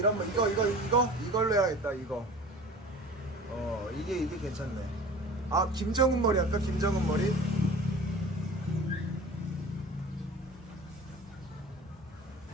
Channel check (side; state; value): both; normal; correlation 0.41